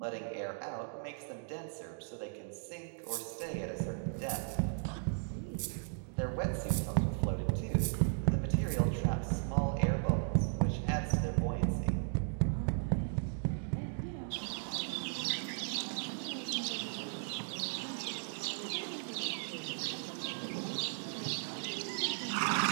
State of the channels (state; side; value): silent; left; digital silence